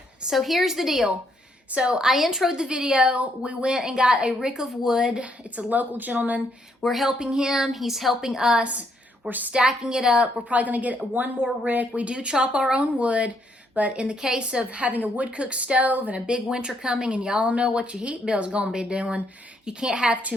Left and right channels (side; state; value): both; normal; correlation 0.73